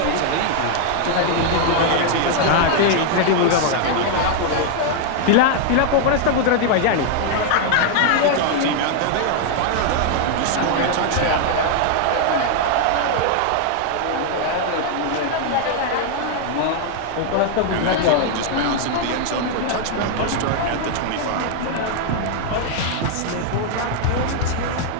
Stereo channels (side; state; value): both; different; correlation 0.00